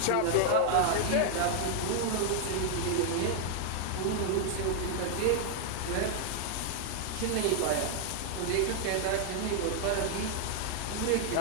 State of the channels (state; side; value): different; both; correlation 0.00